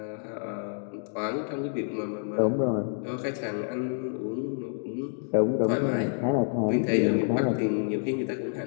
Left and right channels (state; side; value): silent; right; digital silence